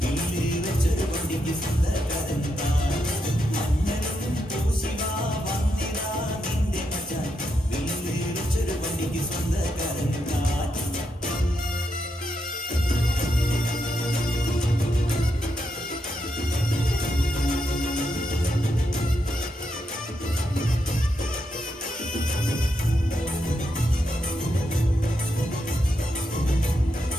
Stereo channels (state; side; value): normal; both; correlation 0.82